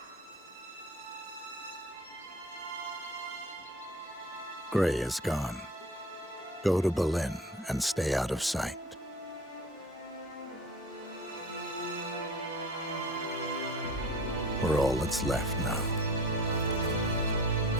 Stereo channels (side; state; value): both; normal; correlation 0.42